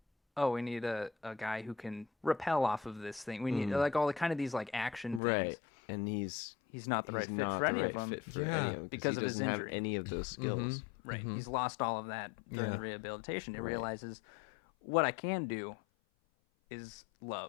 oh, we need a guy who can rappel off of this thing. We need like all the kind of these like action things. Right. And he's not the right fit for any of them. Because of he his doesn't have injury. any of those skills. Right. He's lost all of that during Yeah. the rehabilitation. He realizes what I can do is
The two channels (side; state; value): right; drops out; at 5.2 s